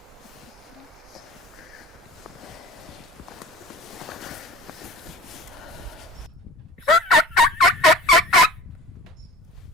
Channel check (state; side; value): normal; both; correlation 0.40